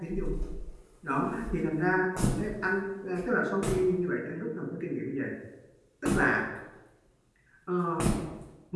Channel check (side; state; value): both; identical; correlation 1.00